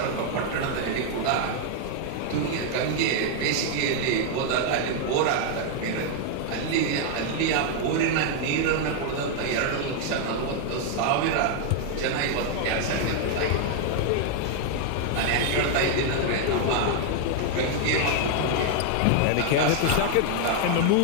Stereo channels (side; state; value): both; different; correlation 0.00